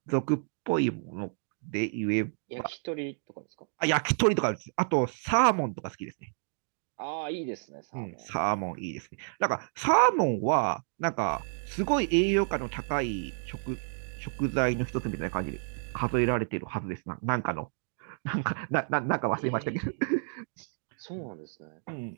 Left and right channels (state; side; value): silent; left; digital silence